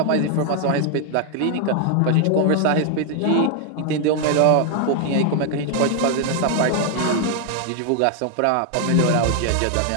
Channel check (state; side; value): different; both; correlation 0.00